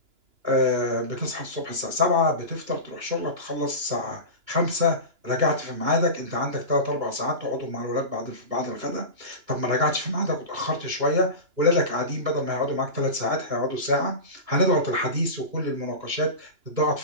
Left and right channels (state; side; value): late; left; 2.9 ms